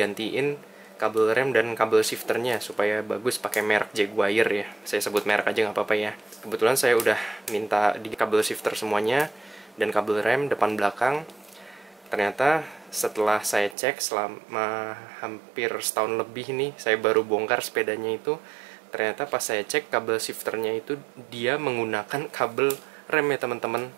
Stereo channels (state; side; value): drops out; left; at 13.8 s